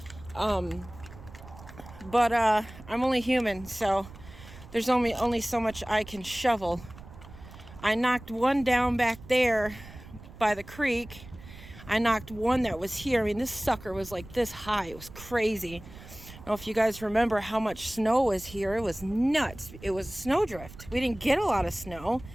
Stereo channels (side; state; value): right; noise; rumble, 17 dB below the sound